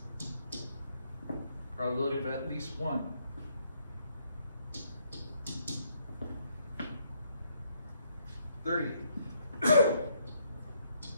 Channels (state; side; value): inverted; both; correlation -0.72